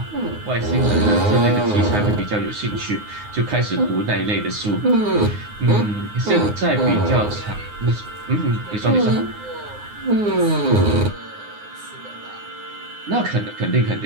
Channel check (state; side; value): late; left; 9.6 ms